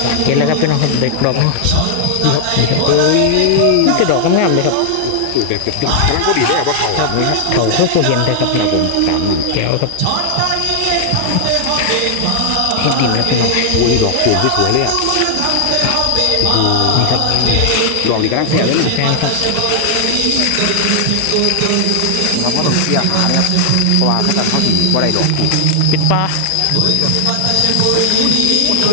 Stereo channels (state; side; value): different; both; correlation 0.00